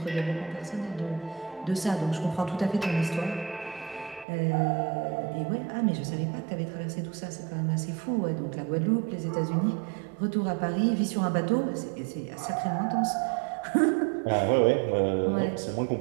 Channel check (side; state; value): left; drops out; at 4.2 s